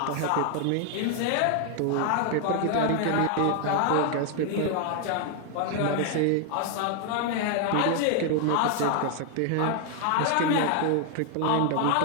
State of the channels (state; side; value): different; both; correlation 0.00